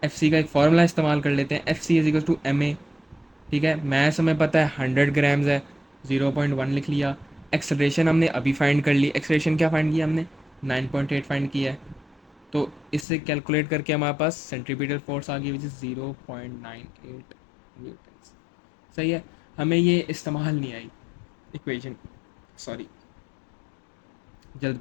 एफ सी का एक फार्मूला इस्तेमाल कर लेते हैं, F C is equal to M A. ठीक है, मैथ्स हमें पता है 100 ग्राम्स है, 0.1 लिख लिया। एक्सलेशन हमने अभी फाइंड कर ली, एक्सलेशन क्या फाइंड किया हमने, 9.8 फाइंड किया है। तो इससे कैलकुलेट करके हमारे पास सेंट्रीपिटल फोर्स आ गई, विच इज़ 0.98 न्यूटन। सही है, हमें ये इस्तेमाल नहीं आई इक्वेशन, सॉरी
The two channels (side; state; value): right; drops out; at 13.1 s